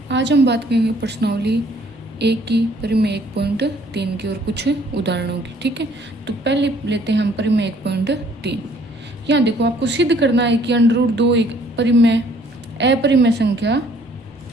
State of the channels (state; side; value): normal; both; correlation 0.60